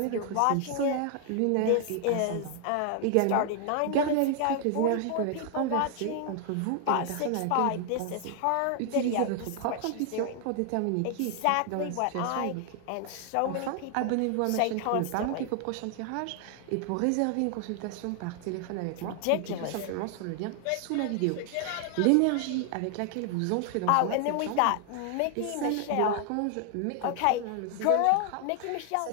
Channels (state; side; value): different; both; correlation 0.00